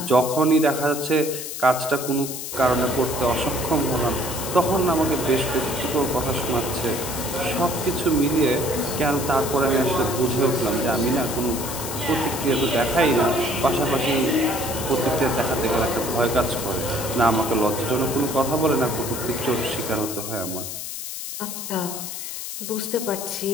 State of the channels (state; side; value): noise; left; hiss, 7 dB below the sound